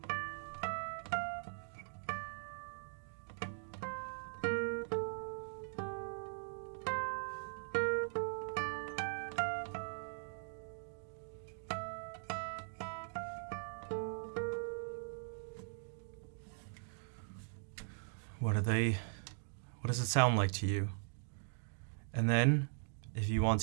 What does it sound like to you? And then, if you want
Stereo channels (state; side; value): silent; left; digital silence